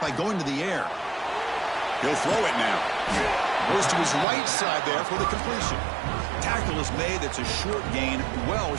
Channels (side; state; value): left; drops out; at 4.2 s